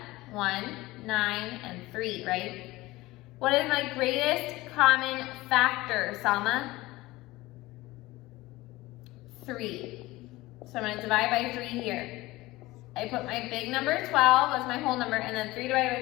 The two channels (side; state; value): right; quieter; 19.3 dB